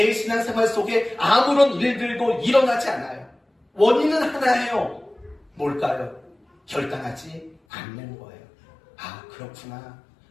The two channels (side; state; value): right; drops out; at 7.6 s